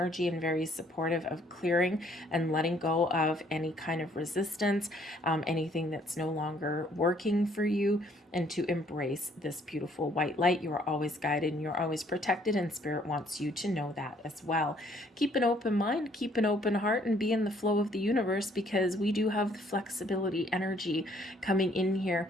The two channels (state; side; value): normal; both; correlation 0.63